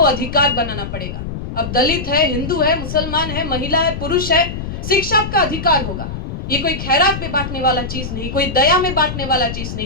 अधिकार बनाना पड़ेगा। अब दलित है, हिंदू है, मुसलमान है, महिला है, पुरुष है, शिक्षा का अधिकार होगा। ये कोई खैरात में बांटने वाला चीज नहीं, कोई दया में बांटने वाला चीज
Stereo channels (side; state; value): left; noise; rumble, 6 dB below the sound